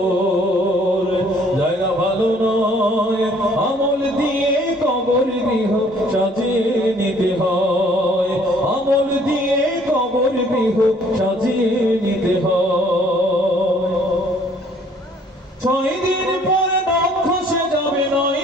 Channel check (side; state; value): both; normal; correlation 0.59